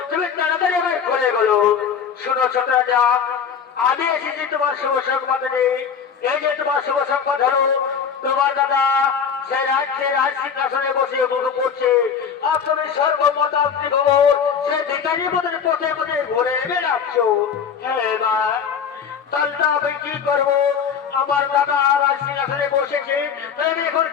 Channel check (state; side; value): quieter; right; 7.0 dB